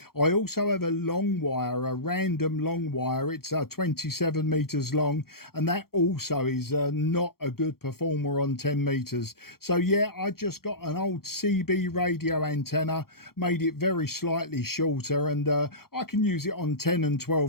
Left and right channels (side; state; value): right; late; 0.94 ms